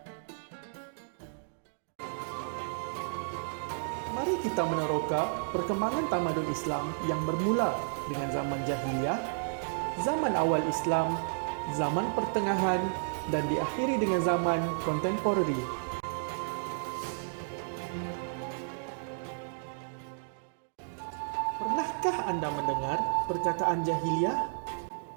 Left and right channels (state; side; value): silent; left; digital silence